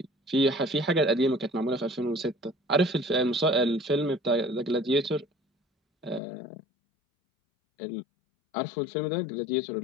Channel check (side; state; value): right; drops out; at 6.2 s